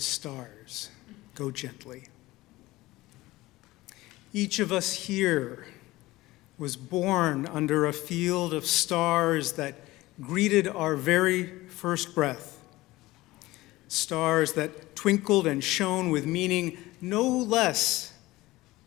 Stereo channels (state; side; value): quieter; right; 18.8 dB